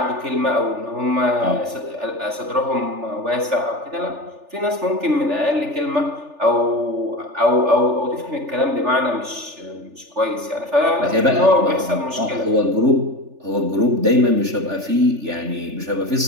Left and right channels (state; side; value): late; left; 3.4 ms